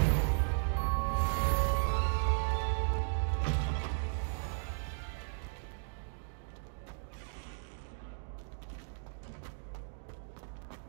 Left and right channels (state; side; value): silent; left; digital silence